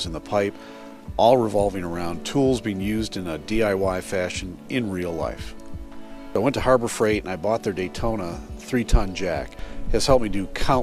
in the pipe, all revolving around tools being used in a DIY fashion in real life. I went to Harbor Freight and I bought their Daytona 3-ton jack. It has helped me do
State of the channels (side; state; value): both; identical; correlation 1.00